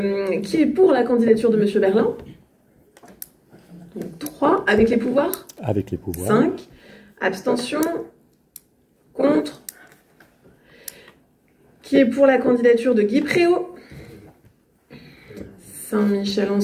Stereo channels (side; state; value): both; identical; correlation 1.00